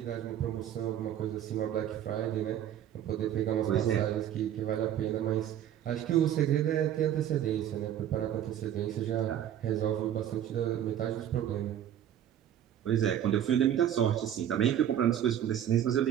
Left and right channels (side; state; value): left; quieter; 10.5 dB